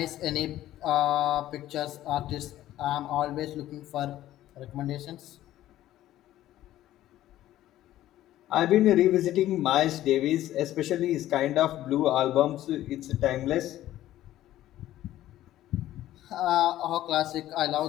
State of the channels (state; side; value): quieter; right; 13.8 dB